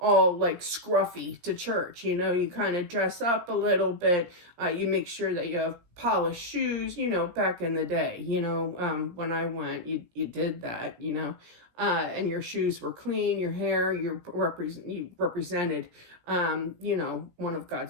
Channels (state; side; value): late; left; 17 ms